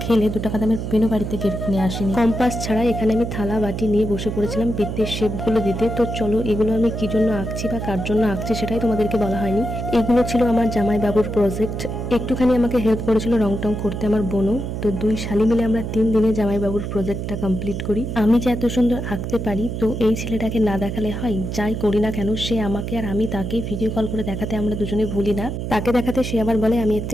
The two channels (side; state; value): right; noise; hum, 4 dB below the sound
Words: খেলে 2 টাকা দামের পেনও বাড়িতে কিনে আসিনি। কম্পাস ছাড়া এখানে আমি থালা বাটি নিয়ে বসে পড়েছিলাম বৃত্তের শেপগুলো দিতে। তো চলো, এগুলো আমি কি জন্য আঁকছি বা কার জন্য আঁকছি সেটাই তোমাদেরকে বলা হয়নি। এগুলো ছিল আমার জামাইবাবুর প্রজেক্ট। একটুখানি আমাকে হেল্প করেছিল রং টং করতে আমার বোনও। তো 2 শালি মিলে আমরা 3 দিনে জামাইবাবুর প্রজেক্টটা কমপ্লিট করি। আমি যে এত সুন্দর আঁকতে পারি তো এই ছেলেটাকে না দেখালে হয়? যাই করি না কেন সে আমাকে আর আমি তাকে ভিডিও কল করে দেখাতে আমরা দুজনে ভুলি না। তাকে দেখাতে সে আবার বলে আমি এর